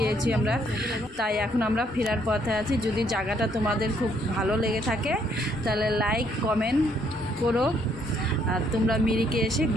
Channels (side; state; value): both; normal; correlation 0.68